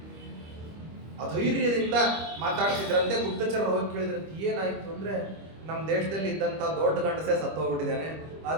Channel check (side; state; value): left; late; 25 ms